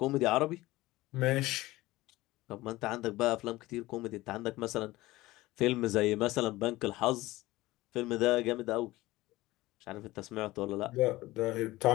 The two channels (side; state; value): right; quieter; 18.6 dB